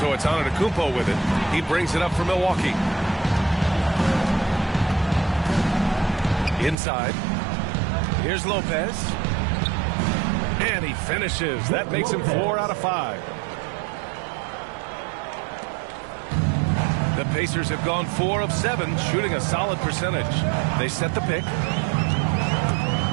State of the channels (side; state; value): left; drops out; at 6.8 s